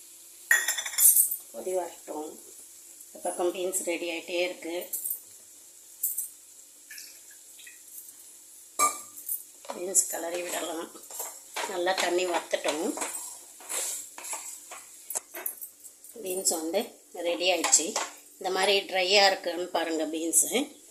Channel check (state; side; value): identical; both; correlation 1.00